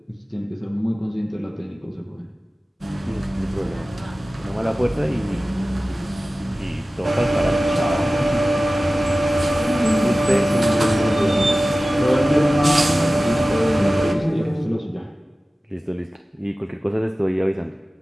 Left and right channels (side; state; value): both; normal; correlation 0.96